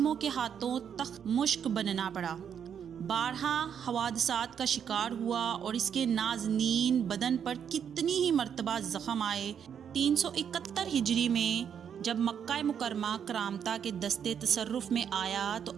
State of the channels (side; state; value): left; quieter; 8.1 dB